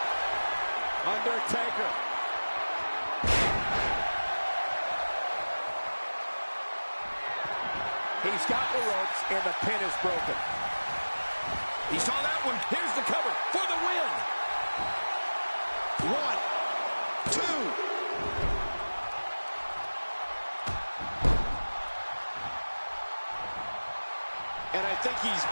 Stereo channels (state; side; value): inverted; both; correlation -1.00